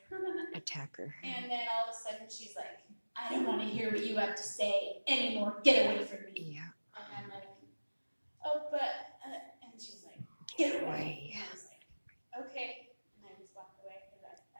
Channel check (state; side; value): inverted; both; correlation -1.00